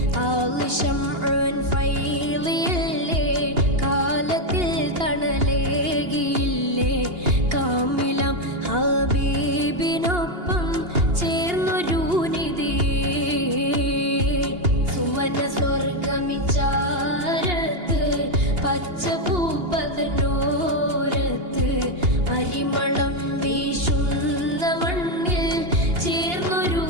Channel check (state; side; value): late; left; 2.8 ms